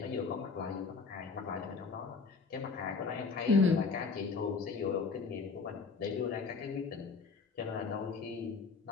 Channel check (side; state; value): right; quieter; 4.7 dB